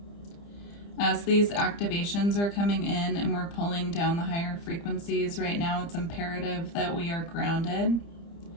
As these activations are coming in and we're pulling down the higher frequencies right now, it's imperative that we are grounded.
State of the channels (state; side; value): late; right; 30 ms